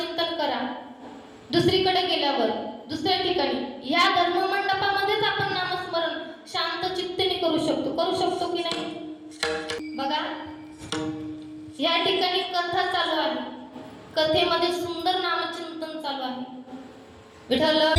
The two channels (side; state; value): both; identical; correlation 1.00